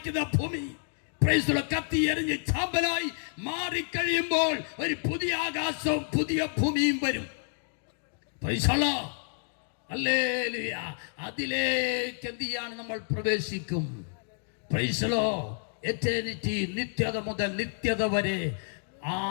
ഭൂമി കത്തി എറിഞ്ഞ് ചാമ്പലായി മാറിക്കഴിയുമ്പോൾ ഒരു പുതിയ ആകാശവും പുതിയ ഭൂമിയും വരും. ഹല്ലേലൂയ. അതിലേക്ക് എന്ത് ചെയ്യാണ്? നമ്മൾ പ്രവേശിക്കും. Price the Lord. എറ്റേണിറ്റി, നിത്യത മുതൽ നിത്യത വരെ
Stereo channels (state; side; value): silent; right; 56 dB below the other